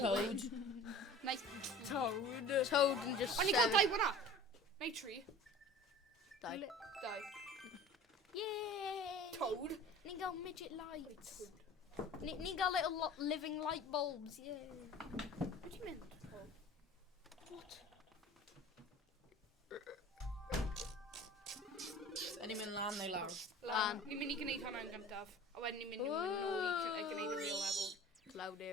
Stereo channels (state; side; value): normal; both; correlation 0.42